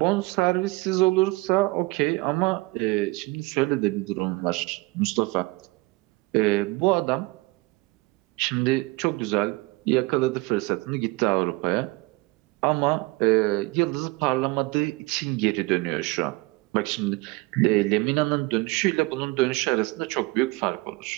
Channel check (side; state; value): left; quieter; 23.7 dB